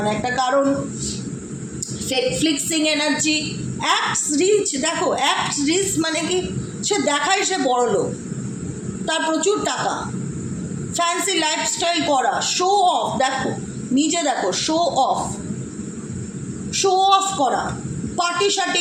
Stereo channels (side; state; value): both; identical; correlation 1.00